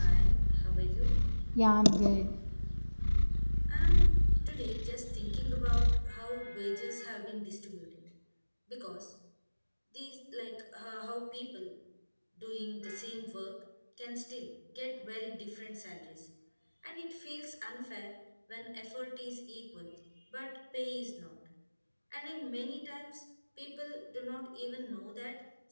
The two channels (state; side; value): inverted; both; correlation -1.00